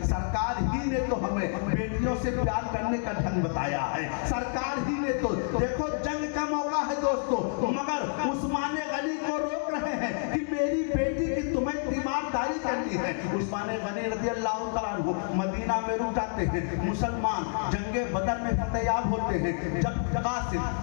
سرکار ہی نے تو ہمیں بیٹیوں سے پیار کرنے کا ڈھنگ بتایا ہے، سرکار ہی نے تو، دیکھو جنگ کا موقع ہے دوستو، مگر عثمان غنی کو روک رہے ہیں کہ میری بیٹی کی تمہیں تیمارداری کرنی ہے۔ عثمان غنی رضی اللہ تعالیٰ عنہ مدینہ میں رک جاتے ہیں، مسلمان جنگ بدر میں فتح یاب ہوتے ہیں۔ جب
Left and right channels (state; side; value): silent; right; 59 dB below the other